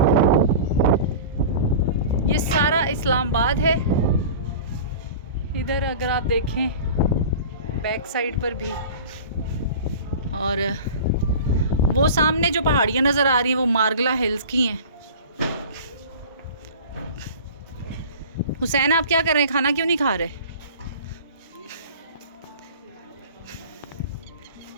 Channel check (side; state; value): both; inverted; correlation -0.38